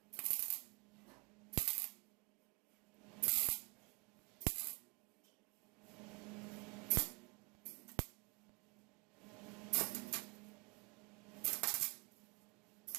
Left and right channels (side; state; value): left; quieter; 29.5 dB